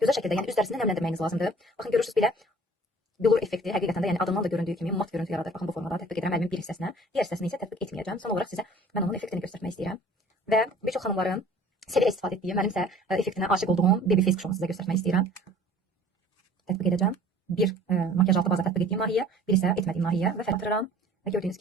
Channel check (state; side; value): normal; both; correlation 0.49